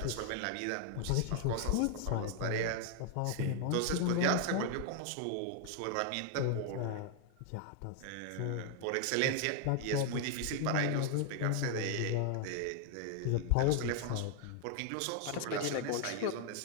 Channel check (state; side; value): different; both; correlation 0.00